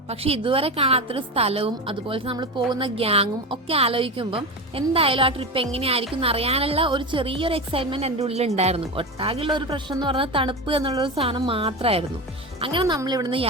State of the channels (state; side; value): normal; both; correlation 0.22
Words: പക്ഷെ ഇതുവരെ കാണാത്തൊരു സ്ഥലവും അതുപോലെ നമ്മൾ പോകുന്ന ഗ്യാങ്ങും ഒക്കെ ആലോചിക്കുമ്പം എന്തായാലും ആ ട്രിപ്പ് എങ്ങനെയായിരിക്കും എന്നറിയാനുള്ള ഒരു ചെറിയൊരു എക്സൈറ്റ്മെന്റ് എൻ്റെ ഉള്ളിൽ ഉണ്ടായിരുന്നു. ഒട്ടാകെയുള്ള ഒരു പ്രശ്നം എന്ന് പറഞ്ഞാൽ തണുപ്പ് എന്നുള്ളൊരു സാധനം മാത്രമായിരുന്നു. അങ്ങനെ നമ്മൾ ഇവിടുന്ന്